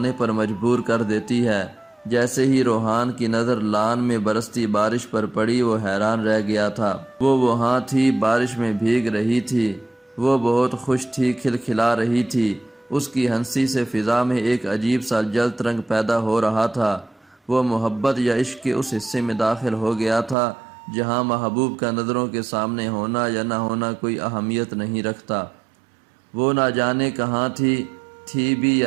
پر مجبور کر دیتی ہے۔ جیسے ہی روحان کی نظر لان میں برستی بارش پر پڑی وہ حیران رہ گیا تھا۔ وہ وہاں تھی، بارش میں بھیگ رہی تھی، وہ بہت خوش تھی، کھلکھلا رہی تھی۔ اس کی ہنسی سے فضا میں ایک عجیب سا جلد رنگ پیدا ہو رہا تھا۔ وہ محبت یا عشق کے اس حصے میں داخل ہو گیا تھا جہاں محبوب کا نظروں کے سامنے ہونا یا نہ ہونا کوئی اہمیت نہیں رکھتا۔ وہ نہ جانے کہاں تھی بھی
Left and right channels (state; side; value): drops out; left; at 20.4 s